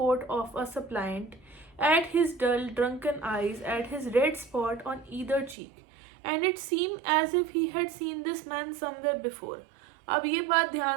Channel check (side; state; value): left; drops out; at 5.6 s